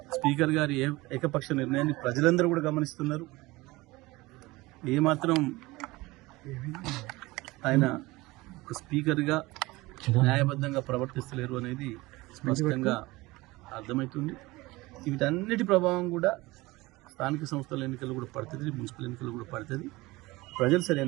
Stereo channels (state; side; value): quieter; left; 21.0 dB